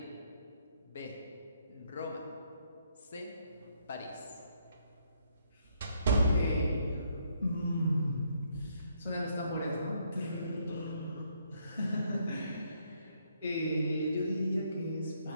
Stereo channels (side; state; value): both; inverted; correlation -0.72